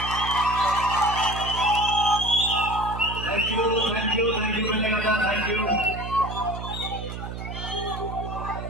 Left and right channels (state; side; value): noise; right; hum, 8 dB below the sound